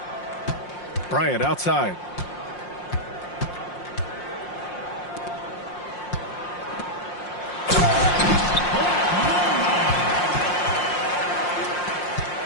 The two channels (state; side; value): late; right; 5.6 ms